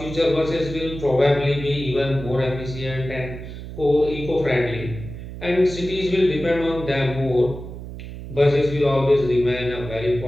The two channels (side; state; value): right; noise; hum, 11 dB below the sound